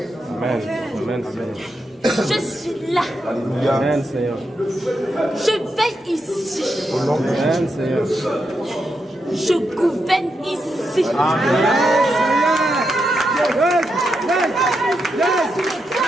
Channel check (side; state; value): both; normal; correlation 0.84